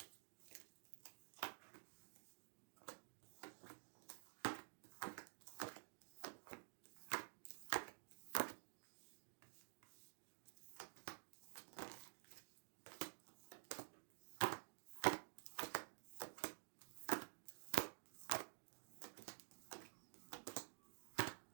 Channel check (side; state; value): left; silent; digital silence